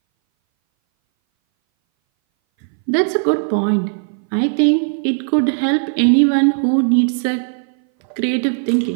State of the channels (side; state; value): left; silent; 61 dB below the other